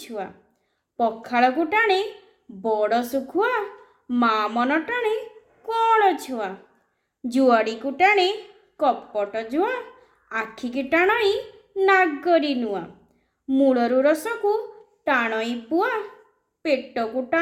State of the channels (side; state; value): both; identical; correlation 1.00